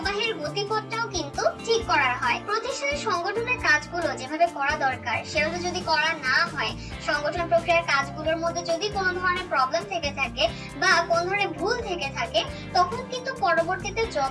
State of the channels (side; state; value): both; identical; correlation 1.00